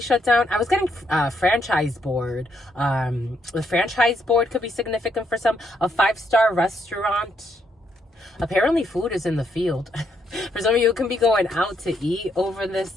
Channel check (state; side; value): normal; both; correlation 0.75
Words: down. I was getting franchise board. The franchise board could be significant for some. A 5-star restaurant. Apparently food is in the field. For some of you, it can be going out to eat over